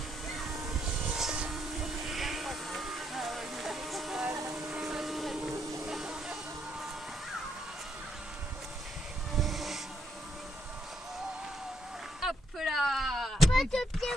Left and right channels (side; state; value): both; normal; correlation 0.75